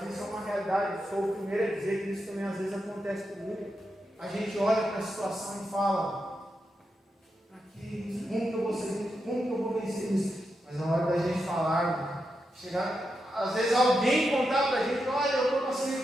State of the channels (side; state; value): both; normal; correlation 0.86